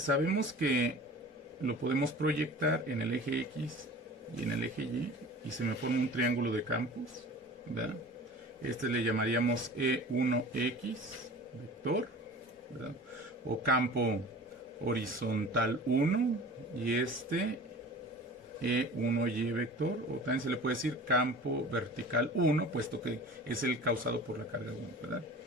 que lo podemos proyectar en el eje X y en el eje Y y se me forma un triángulo de campos, ¿verdad? Este le llamaríamos E1X vector, ¿verdad? O campo horizontal 1 y este E1Y vector, o también se le puede decir campo vertical 1, puesto que es el causado por la carga 1, ¿verdad?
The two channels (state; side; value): normal; both; correlation 0.40